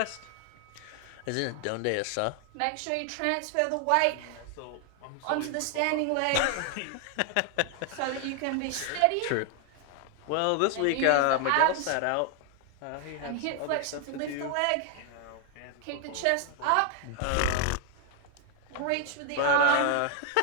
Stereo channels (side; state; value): both; different; correlation 0.00